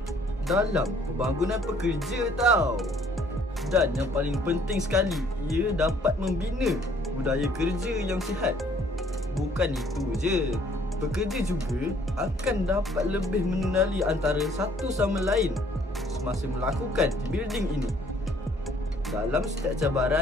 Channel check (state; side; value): normal; both; correlation 0.61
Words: dalam pembangunan pekerja tau. Dan yang paling penting sekali, ia dapat membina budaya kerja yang sihat. Bukan itu je, pekerja juga akan dapat lebih mengenali antara satu sama lain semasa melakukan team building ini. Dalam setiap